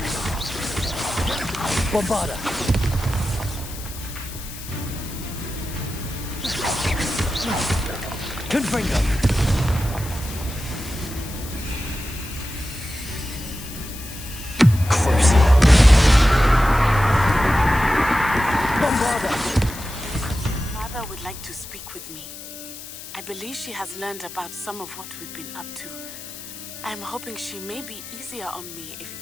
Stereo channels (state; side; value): noise; left; hiss, 13 dB below the sound